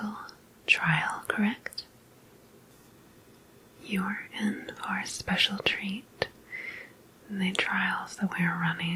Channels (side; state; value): both; identical; correlation 1.00